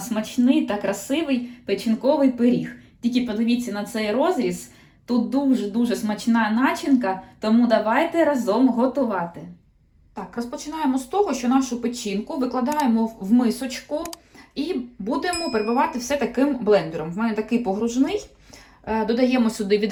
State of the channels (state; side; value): identical; both; correlation 1.00